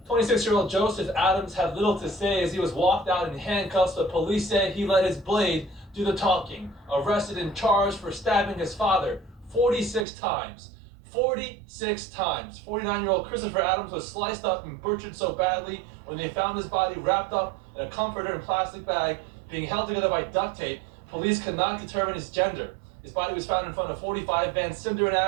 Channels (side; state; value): left; drops out; at 10.1 s